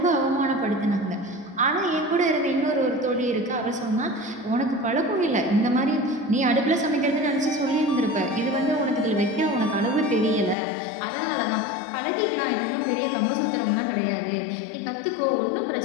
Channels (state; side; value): drops out; right; at 10.6 s